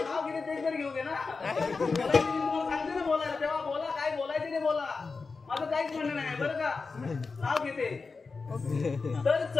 नाव घेणे तेच घेऊ दे ना सांगते ना बोलायला तेव्हा बोला काय बोलायचं नाही बोला माझं काहीच म्हणणं नाही बरं का नाव घेते तर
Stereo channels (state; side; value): quieter; right; 4.4 dB